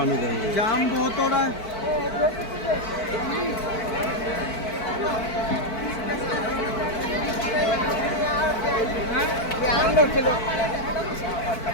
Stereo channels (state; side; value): late; right; 4.5 ms